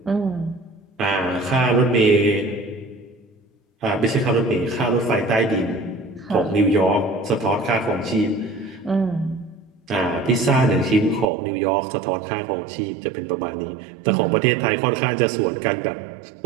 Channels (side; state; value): left; drops out; at 11.3 s